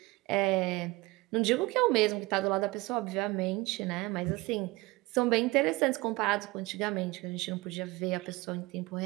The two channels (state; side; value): quieter; left; 22.0 dB